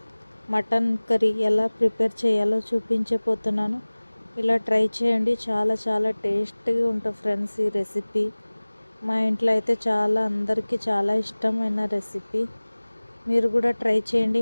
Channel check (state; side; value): inverted; both; correlation -1.00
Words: మటన్ కర్రీ ఎలా ప్రిపేర్ చేయాలో చూపించబోతున్నాను. ఇలా ట్రై చేయండి, చాలా చాలా టేస్టీగా ఉంటుంది ఫ్రెండ్స్. ఈ రెసిపీ మా ఇంట్లో అయితే అందరికీ చాలా ఇష్టమైన రెసిపీ. మీరు కూడా ట్రై చేయండి.